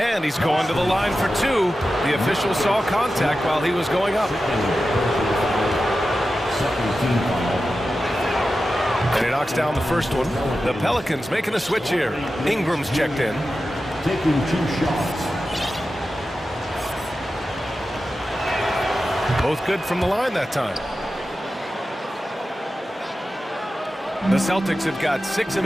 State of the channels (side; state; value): both; normal; correlation 0.92